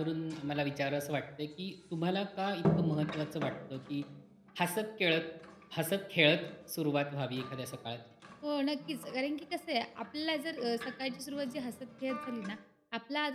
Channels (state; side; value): identical; both; correlation 1.00